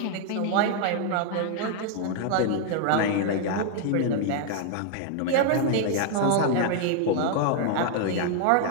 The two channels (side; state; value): both; different; correlation 0.00